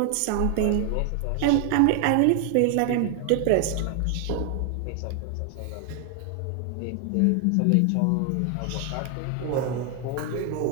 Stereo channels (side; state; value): both; different; correlation 0.00